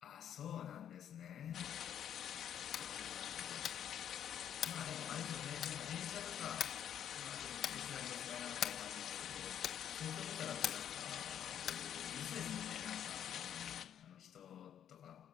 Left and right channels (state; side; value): quieter; right; 9.7 dB